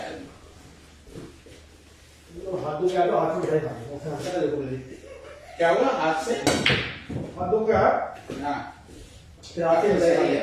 में। हाथों क्या तो हाथ में मिठाई खानी देखो क्या हुआ हाथ से? हाथों क्या हाँ फिर हाथ से मिठाई सही खानी है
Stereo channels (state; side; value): identical; both; correlation 1.00